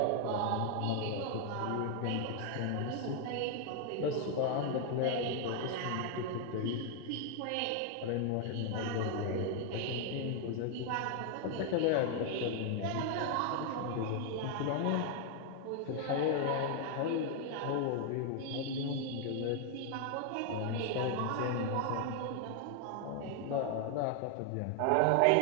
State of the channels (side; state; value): both; different; correlation 0.00